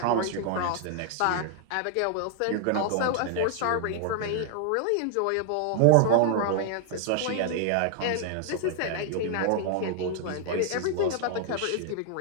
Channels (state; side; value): different; both; correlation 0.00